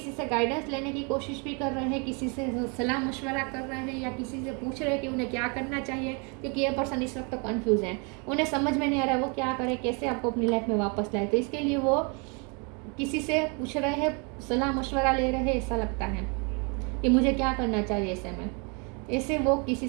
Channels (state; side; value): quieter; left; 33.9 dB